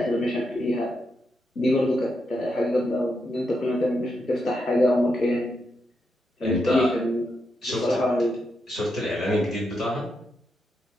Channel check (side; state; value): both; normal; correlation 0.83